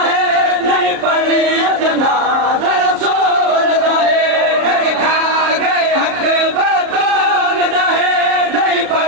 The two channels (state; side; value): late; left; 33 ms